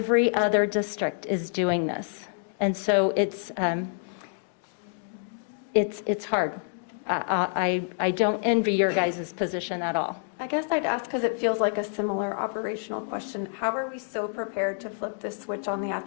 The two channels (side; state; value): right; silent; digital silence